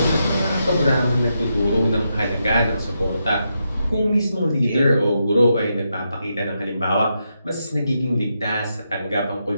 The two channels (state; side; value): inverted; both; correlation -0.84